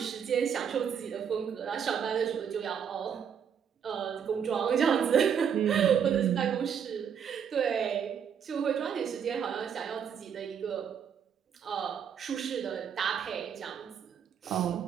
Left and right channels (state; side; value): quieter; left; 7.8 dB